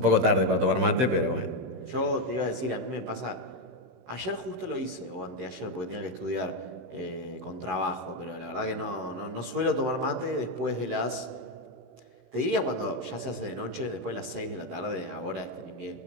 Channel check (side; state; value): left; late; 16 ms